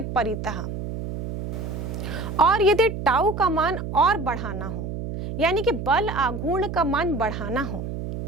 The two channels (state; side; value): noise; right; hum, 6 dB below the sound